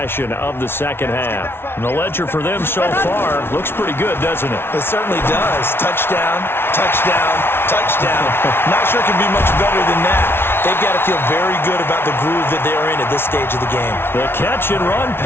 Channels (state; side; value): late; right; 0.11 ms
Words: of the second half. And the ledger for them so far looks pretty good, doesn't it? It certainly does. Touchdown, touchdown, touchdown. Not sure it can be much better than that. They've got to feel very good about the groove that they're in at this stage of the game. The catch and run